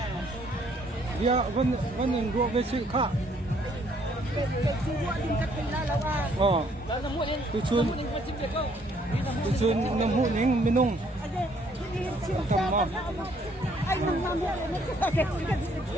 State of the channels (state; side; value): normal; both; correlation 0.65